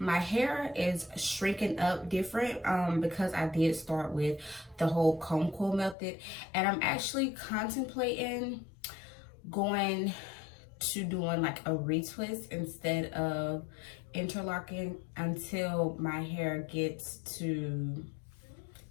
hair is shrinking up different because I did start with the whole comb coil method, and I'm actually contemplating going to doing like a retwist instead of interlocking until my hair gets to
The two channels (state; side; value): drops out; right; at 6.0 s